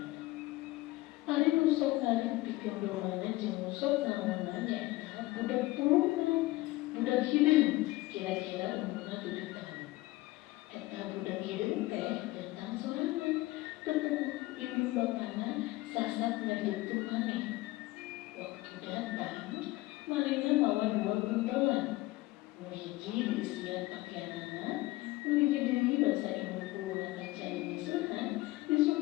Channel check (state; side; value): quieter; right; 19.3 dB